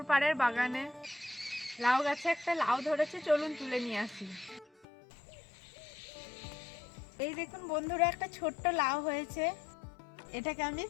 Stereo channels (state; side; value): drops out; right; at 4.9 s